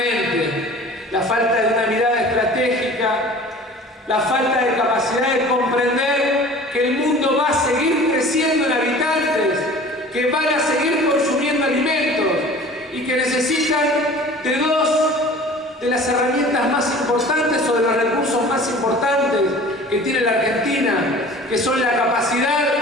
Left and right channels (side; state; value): both; normal; correlation 0.44